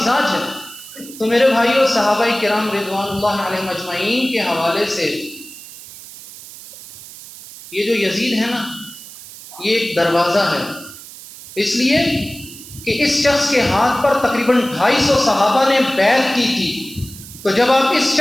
ہے۔ تو میرے بھائیوں، صحابہ کرام رضوان اللہ علیہ مجمعین کے حوالے سے یہ جو یزید ہے نا، یہ ایک دروازہ ہے، اس لیے کہ اس شخص کے ہاتھ پر تقریباً 250 صحابہ نے بیعت کی تھی، تو جب آپ اس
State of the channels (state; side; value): noise; right; hiss, 16 dB below the sound